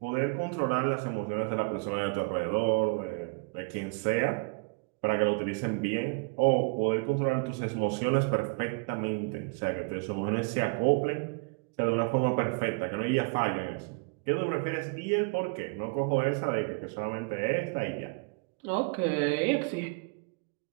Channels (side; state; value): left; quieter; 32.1 dB